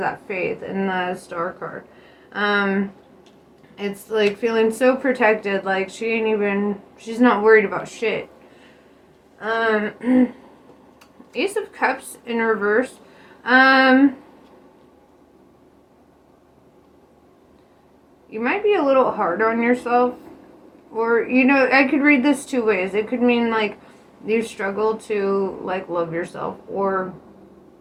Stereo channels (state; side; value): identical; both; correlation 1.00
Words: faith in the Star card. It's like feeling so protected, like she's not worried about shit. Ace of Cups in reverse. You might be a little hard on yourself, or, you know, I could read this two ways. It could mean like you struggle to like love yourself, or